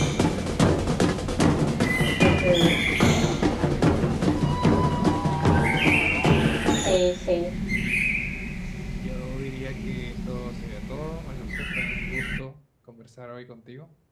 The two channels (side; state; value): both; identical; correlation 1.00